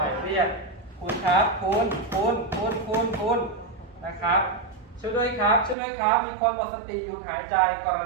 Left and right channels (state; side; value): drops out; left; at 5.8 s